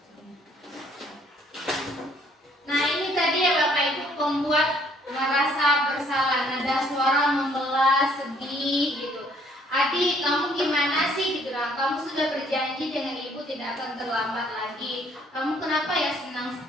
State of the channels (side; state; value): both; normal; correlation 0.63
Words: Nah ini tadi ya Bapak Ibu, pembuat merasa bersalah, nada suara membelah, sedih gitu. Adi, kamu gimana sih gitu lah? Kamu sudah berjanji dengan ibu tidak akan terlambat lagi. Kamu kenapa ya senang